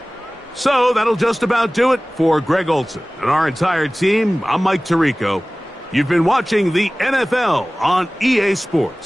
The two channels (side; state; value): both; normal; correlation 0.98